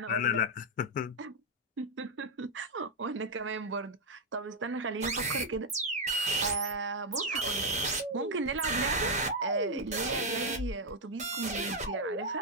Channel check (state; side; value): normal; both; correlation 0.00